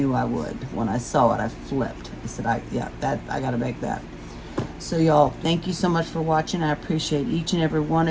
I would. When I saw it, I flipped. I said, I got to make that. So y'all, thank you so much for watching. I appreciate each and every one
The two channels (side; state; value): both; identical; correlation 1.00